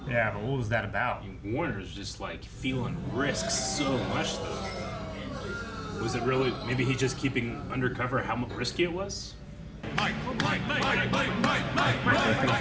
Yeah, but what was that about? Warner's just like feeling risk so much though. Was it really? Maybe he's just keeping undercover how risky it was. Mike, Mike, Mike, Mike, Mike, Mike, Mike, Mike,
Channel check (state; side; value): identical; both; correlation 1.00